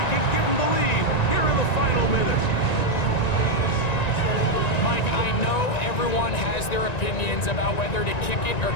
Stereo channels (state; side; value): late; right; 1.9 ms